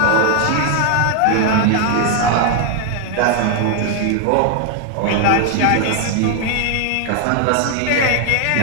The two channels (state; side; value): different; both; correlation 0.00